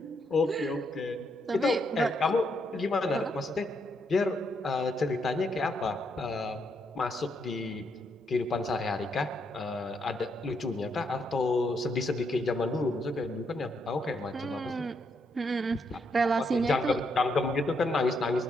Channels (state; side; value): normal; both; correlation 0.77